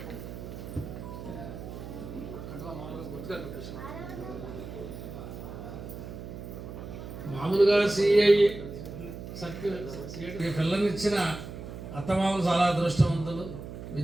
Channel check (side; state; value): right; noise; hum, 10 dB below the sound